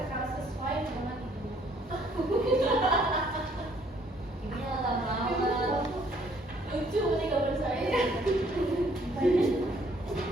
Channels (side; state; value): both; normal; correlation 0.64